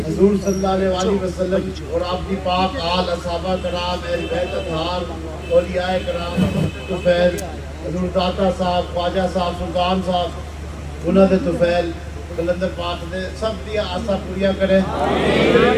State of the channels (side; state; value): both; identical; correlation 1.00